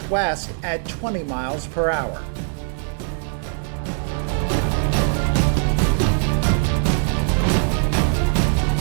at 20 miles per hour.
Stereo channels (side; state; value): left; silent; 63 dB below the other